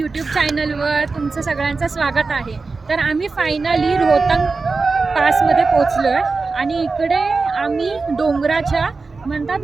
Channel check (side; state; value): left; quieter; 4.1 dB